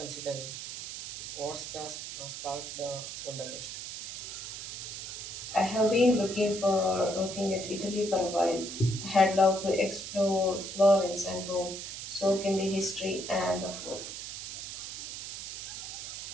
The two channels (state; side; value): noise; right; hiss, 8 dB below the sound